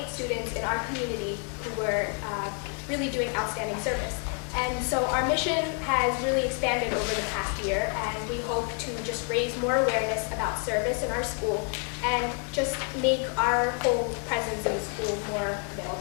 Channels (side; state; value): right; quieter; 38.4 dB